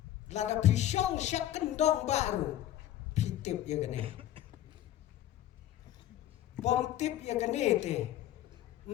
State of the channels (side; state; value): right; quieter; 12.7 dB